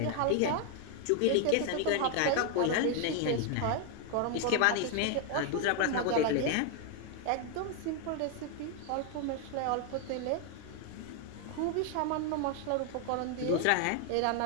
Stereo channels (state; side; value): different; both; correlation 0.00